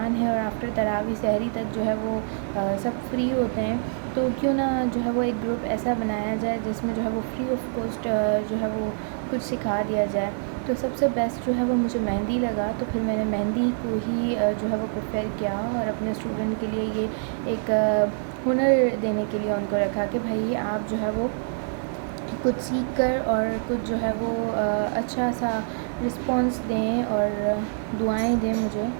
ہے اور آفٹر تراویح سحری تک جو ہے وہ سب فری ہوتے ہیں تو کیوں نہ جو ہے وہ ایک گروپ ایسا بنایا جائے جس میں جو ہے وہ فری آف کاسٹ جو ہے وہ کچھ سکھا دیا جائے. تو سب سے بیسٹ جو ہے وہ مجھے مہندی لگا تو پھر میں نے مہندی کو ہی جو ہے وہ پریفر کیا اور اپنے اسٹوڈنٹ کے لیے یہ ایک ہنر دینے کے لیے ان کو رکھا کہ بھائی آپ جو ہے وہ کچھ سیکھ کر اور کچھ جو ہے وہ اچھا سا رسپانس دیں اور دعائیں دیں مجھے.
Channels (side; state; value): left; silent; 61 dB below the other